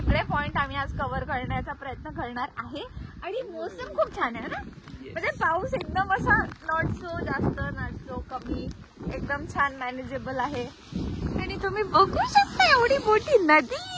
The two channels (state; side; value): identical; both; correlation 1.00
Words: पॉइंट आम्ही आज कव्हर करण्याचा प्रयत्न करणार आहे. आणि मोसम खूप छान आहे ना. म्हणजे पाऊस एकदम असा नॉट सो जास्त नॉट सो कमी, एकदम छान मॅनेजेबल आहे. आणि तुम्ही बघू शकता एवढी मोठी नदी.